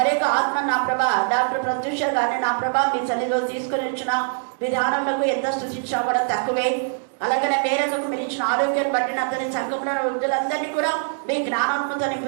ఆత్మ నా ప్రభా డాక్టర్ ప్రత్యూష గారిని నా ప్రభా మీ సన్నిధిలో తీసుకుని వచ్చిన విధానములకు ఎంత స్తుతించినా కూడా తక్కువే. అలాగనే మేరకు మీరు ఇచ్చిన ఆరోగ్యాన్ని బట్టి అతని సంఘంలో వృద్ధులందరినీ కూడా మీ జ్ఞానంతో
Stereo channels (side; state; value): left; silent; digital silence